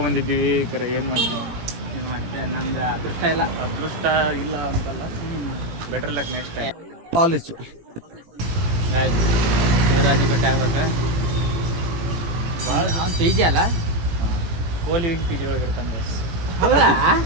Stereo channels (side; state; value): left; late; 18 ms